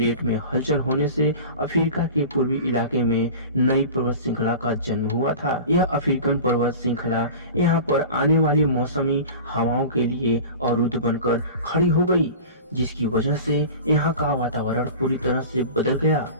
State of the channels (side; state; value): both; inverted; correlation -0.36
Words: में हलचल होने से अफ्रीका के पूर्वी इलाके में नई पर्वत श्रृंखला का जन्म हुआ था। यह अफ्रीकन पर्वत श्रृंखला यहाँ पर आने वाली मौसमी हवाओं के लिए अवरुद्ध बनकर खड़ी हो गई, जिसकी वजह से यहाँ का वातावरण पूरी तरह से बदल गया